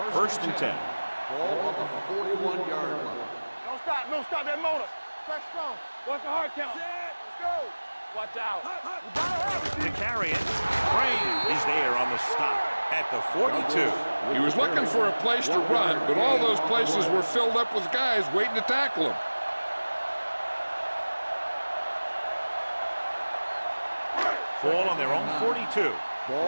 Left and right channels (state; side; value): inverted; both; correlation -1.00